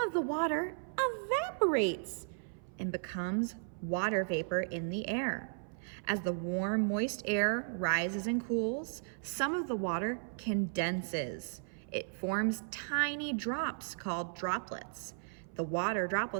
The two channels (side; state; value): left; silent; 54 dB below the other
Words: the water evaporates and becomes water vapor in the air. As the warm, moist air rises and cools, some of the water condenses. It forms tiny drops called droplets. The water